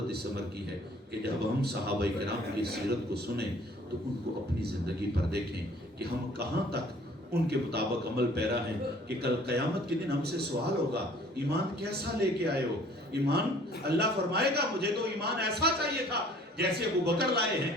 اس عمر کی ہے کہ جب ہم صحابہ کرام کی سیرت کو سنیں تو ان کو اپنی زندگی پر دیکھیں کہ ہم کہاں تک ان کے مطابق عمل پیرا ہیں، کہ کل قیامت کے دن ہم سے سوال ہوگا ایمان کیسا لے کے آئے ہو. ایمان اللہ فرمائے گا مجھے تو ایمان ایسا چاہیے تھا جیسے ابو بکر لائے ہیں،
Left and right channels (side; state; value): both; normal; correlation 0.54